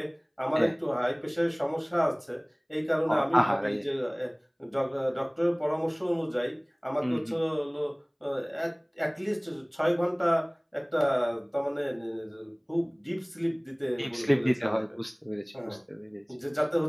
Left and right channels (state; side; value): identical; both; correlation 1.00